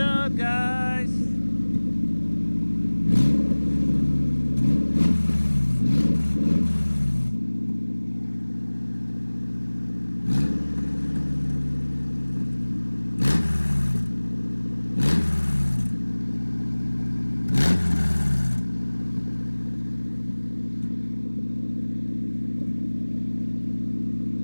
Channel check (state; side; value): inverted; both; correlation -1.00